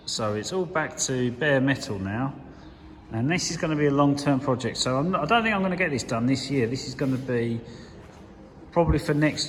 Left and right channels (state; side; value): identical; both; correlation 1.00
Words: so it's all back to bare metal now, and this is going to be a long-term project. So I don't think I'm going to get this done this year. This is going to be probably for